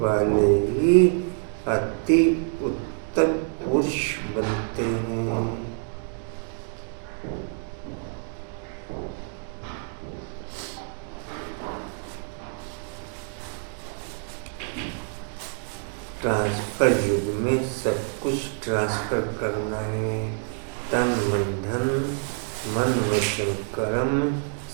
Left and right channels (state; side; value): silent; left; 57 dB below the other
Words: वाले ही अति उत्तम पुरुष बनते हैं। ट्रांसफर युग में सब कुछ ट्रांसफर करना है। तन मन धन मन वचन कर्म